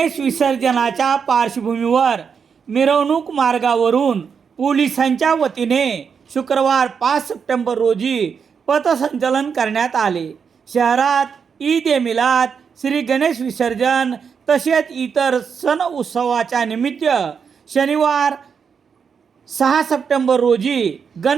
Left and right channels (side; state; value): left; quieter; 6.4 dB